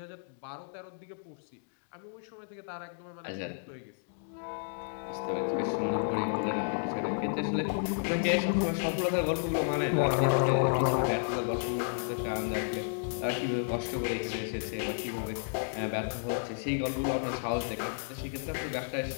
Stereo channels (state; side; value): silent; right; digital silence